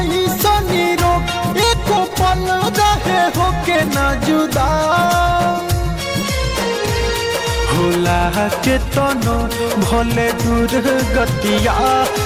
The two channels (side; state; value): both; identical; correlation 1.00